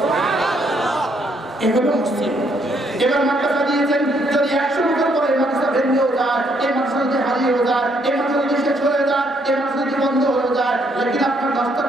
এগুলো মসজিদ এবার মাদ্রাসা দিয়েছেন যদি 100 বছর পরে মাদ্রাসা ভেঙেও যায় এই মাদ্রাসা যদি হারিয়েও যায় এই মাদ্রাসা যদি শেষ হয়ে যায় এই মাদ্রাসা যদি বন্ধ হয়ে যায় লেকিন আপনার 10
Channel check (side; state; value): both; normal; correlation 0.70